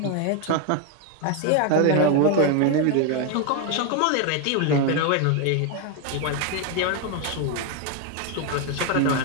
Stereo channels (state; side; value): different; both; correlation 0.01